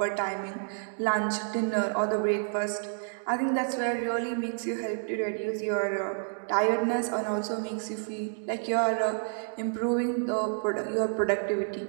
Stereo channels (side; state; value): left; silent; digital silence